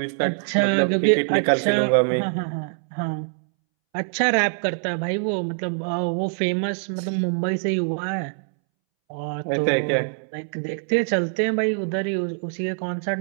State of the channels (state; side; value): silent; left; 63 dB below the other